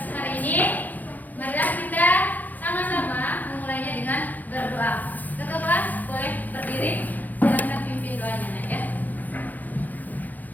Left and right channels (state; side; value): late; right; 0.083 ms